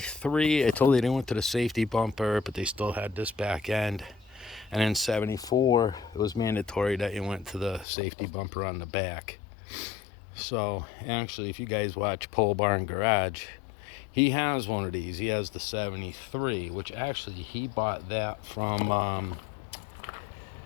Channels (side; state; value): right; drops out; at 7.9 s